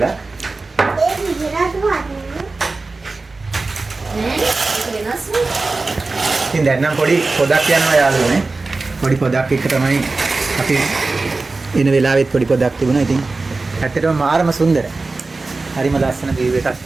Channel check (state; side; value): quieter; left; 3.6 dB